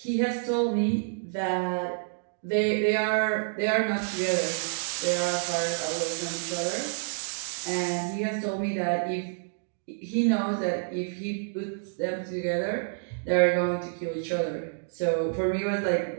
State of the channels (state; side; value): silent; left; digital silence